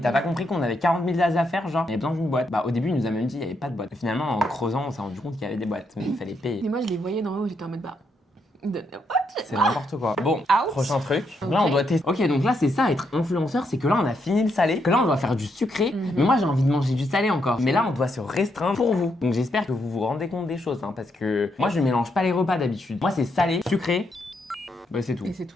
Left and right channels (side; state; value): both; normal; correlation 0.78